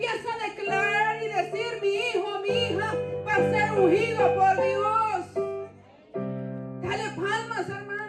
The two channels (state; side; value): identical; both; correlation 1.00